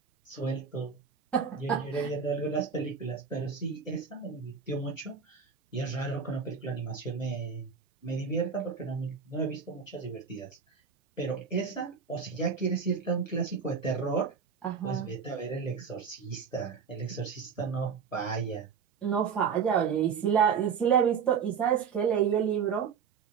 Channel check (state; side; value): quieter; left; 6.3 dB